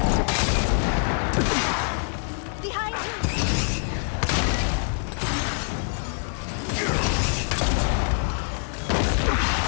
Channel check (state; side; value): silent; right; digital silence